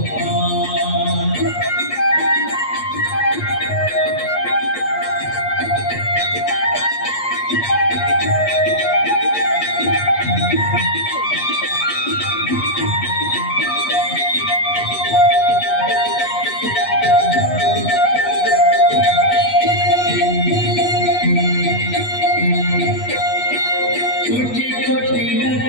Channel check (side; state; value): right; late; 8.3 ms